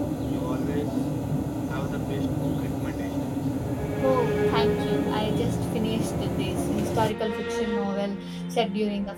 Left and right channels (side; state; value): both; identical; correlation 1.00